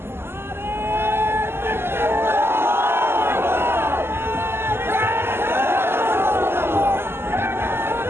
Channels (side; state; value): left; late; 0.12 ms